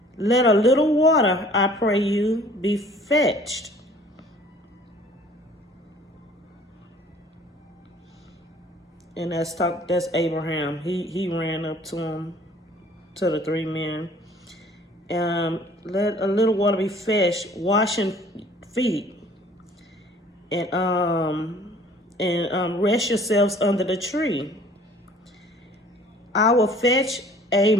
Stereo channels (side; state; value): both; normal; correlation 0.53